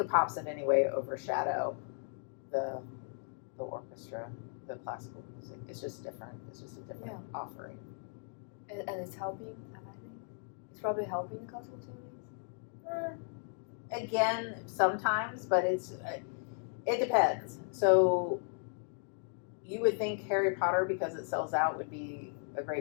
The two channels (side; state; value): right; silent; 54 dB below the other